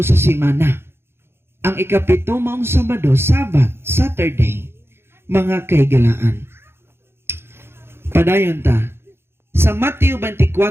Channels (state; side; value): late; left; 0.12 ms